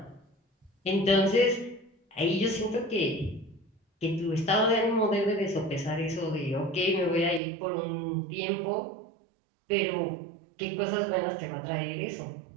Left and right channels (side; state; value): left; drops out; at 7.4 s